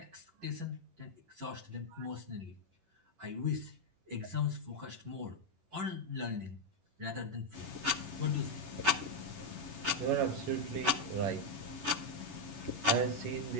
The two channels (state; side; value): late; left; 11 ms